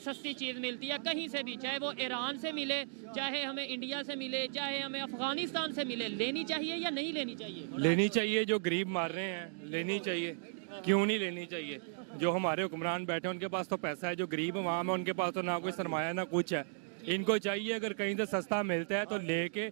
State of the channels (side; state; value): left; silent; digital silence